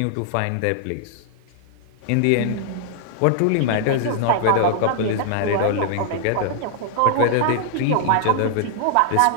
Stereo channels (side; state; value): both; different; correlation -0.01